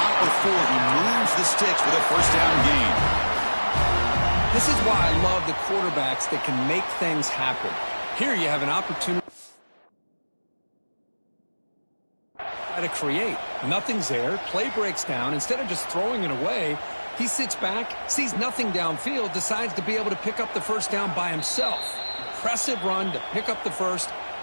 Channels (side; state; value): both; inverted; correlation -1.00